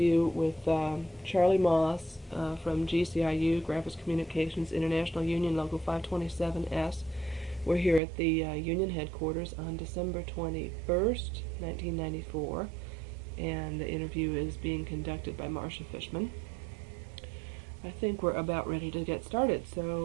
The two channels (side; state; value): left; drops out; at 8.0 s